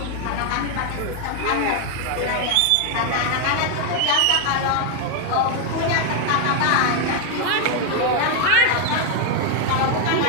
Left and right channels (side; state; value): both; different; correlation 0.00